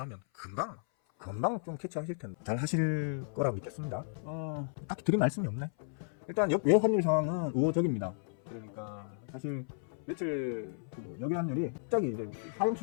하면 금방 좀 캐치하실 텐데 잘 하실 거라고 믿겠습니다. 딱히 드릴 말씀이 없네. 일단 외 환율 상황은 우호적입니다. 그러니까 사실 며칠 여기 환율이 갑자기 이제 하향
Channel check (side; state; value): right; silent; 55 dB below the other